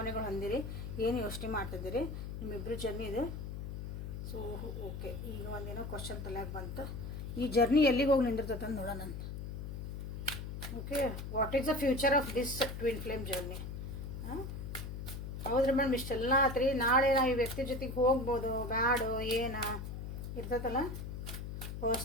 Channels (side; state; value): left; noise; hum, 6 dB below the sound